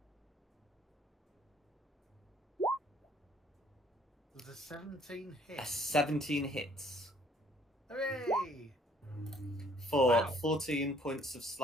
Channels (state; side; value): normal; both; correlation 0.60